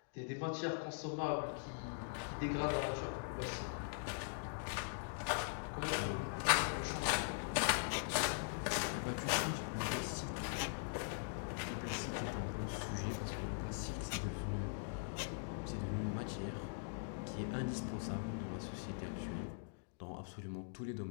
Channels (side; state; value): right; silent; digital silence